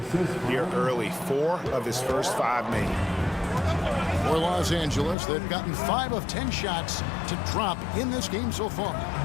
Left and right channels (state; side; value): drops out; right; at 5.2 s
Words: here early. 4 of his first 5 made. For Los Angeles, they've gotten 5 of 10 shots to drop in this game so far.